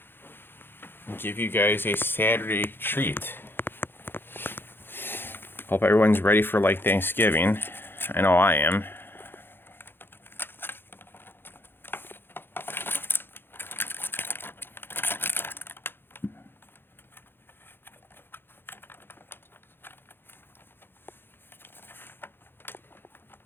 And give you guys a Saturday treat. Hope everyone's ready for like Thanksgiving. I know I am.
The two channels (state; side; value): late; right; 0.10 ms